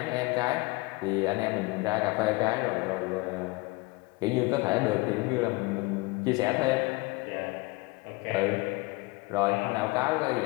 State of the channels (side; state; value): right; quieter; 24.4 dB